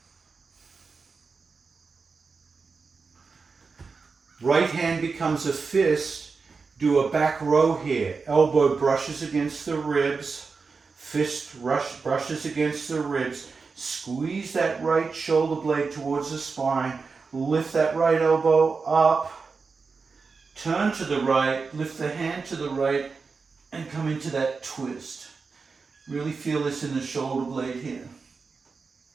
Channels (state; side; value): quieter; left; 4.7 dB